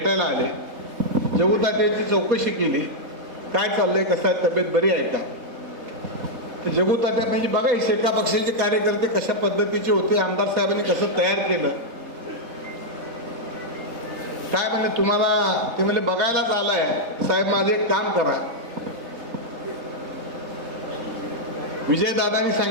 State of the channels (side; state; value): left; late; 4.2 ms